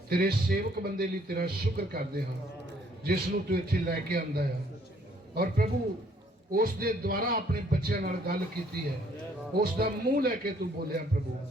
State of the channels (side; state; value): both; normal; correlation 0.63